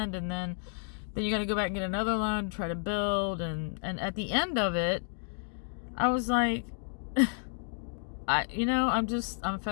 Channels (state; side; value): silent; right; 57 dB below the other